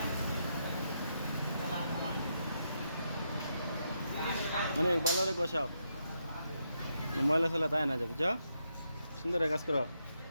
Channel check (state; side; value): inverted; both; correlation -0.81